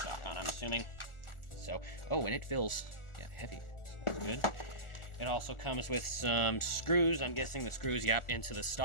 on, I'm assuming. So, oh, and it feels, yeah, heavy. So that's good. It also comes with some screws. I'm guessing the screws, yep, into the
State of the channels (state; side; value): late; right; 1.4 ms